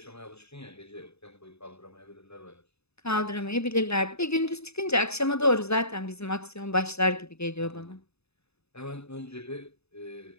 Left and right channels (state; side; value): late; right; 0.79 ms